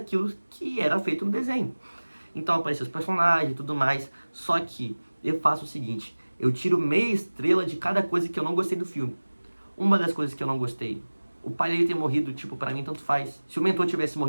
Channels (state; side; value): inverted; both; correlation -1.00